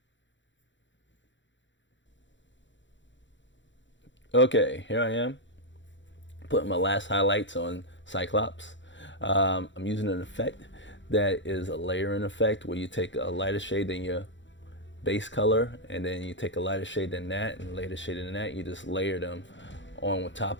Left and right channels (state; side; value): late; right; 0.54 ms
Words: Okay, here I am, putting my last highlights on Cyclops. I'm using an effect that is a layering effect where you take a lighter shade than your base color, and then you take a lighter shade than that and lighter shade than that. You just layer them on